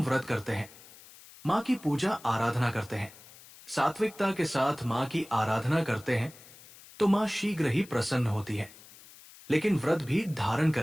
व्रत करते हैं, मां की पूजा आराधना करते हैं, सात्विकता के साथ मां की आराधना करते हैं तो मां शीघ्र ही प्रसन्न होती है। लेकिन व्रत भी धारण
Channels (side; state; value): left; noise; hiss, 21 dB below the sound